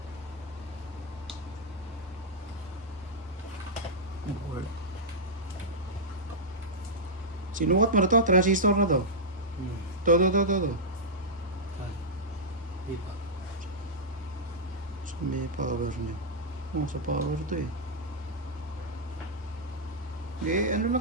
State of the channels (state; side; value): normal; both; correlation -0.08